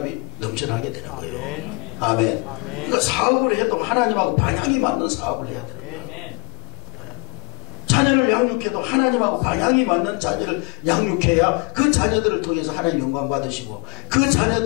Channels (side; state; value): right; quieter; 31.3 dB